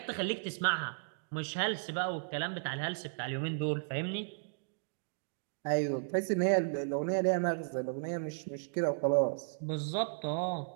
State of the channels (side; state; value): left; silent; digital silence